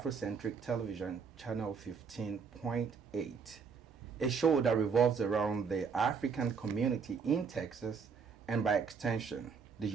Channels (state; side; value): quieter; left; 5.9 dB